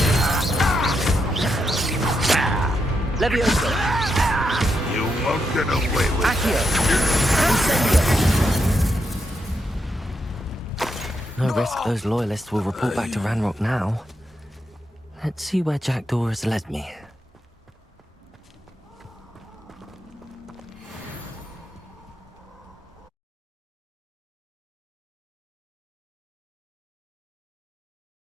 Levioso. You won't get away with Accio. Incendio. No risk those loyalists will report back to Ranrock now. Let's see where Jackdaw has led me.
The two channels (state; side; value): normal; both; correlation 0.82